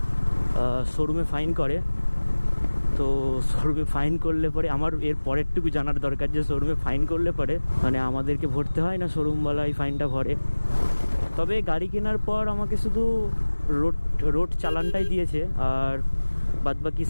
শোরুমে ফাইন করে। তো শোরুমে ফাইন করলে পরে আমার এর পরেরটুকু জানার দরকার যে শোরুমে ফাইন করলে পরে মানে আমাদেরকে ভরতে হয় না শোরুমওয়ালা এই ফাইনটা ভরে। তবে গাড়ি কেনার পর আমাকে শুধু রোড চালানটাই দিয়েছে, আর বাদবাকি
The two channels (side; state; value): both; inverted; correlation -1.00